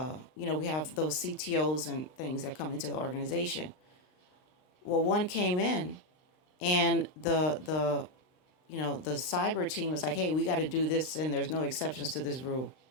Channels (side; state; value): right; late; 39 ms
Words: have those CTOs and things that come into the organization. Well, one came in and the cyber team was like, hey, we got to do this and there's no exceptions to this rule.